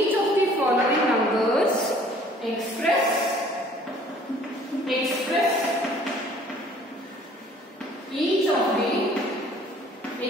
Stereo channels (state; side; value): normal; both; correlation 0.55